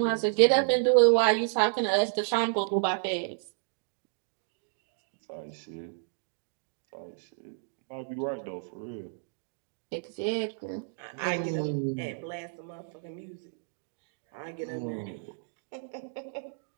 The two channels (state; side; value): silent; left; digital silence